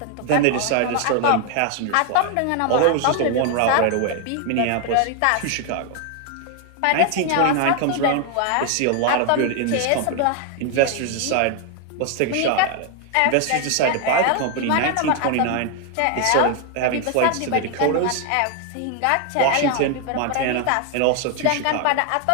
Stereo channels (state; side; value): different; both; correlation 0.00